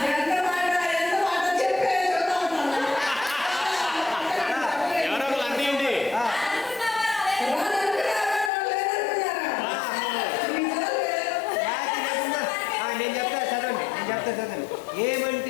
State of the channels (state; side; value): drops out; right; at 8.5 s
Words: ఎవరో ఒకరు అందియండి. నేను చెప్తా చదవండి